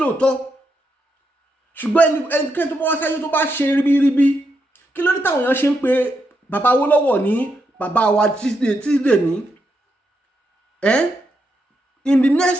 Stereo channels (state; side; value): normal; both; correlation 0.82